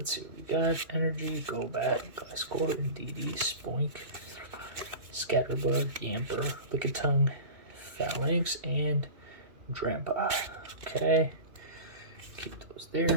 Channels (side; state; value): left; late; 2.7 ms